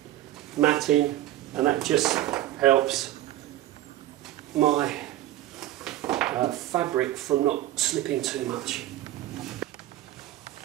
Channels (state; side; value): quieter; left; 14.2 dB